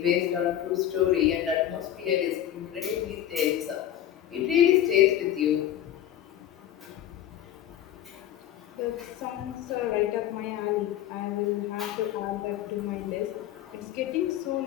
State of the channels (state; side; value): quieter; right; 11.5 dB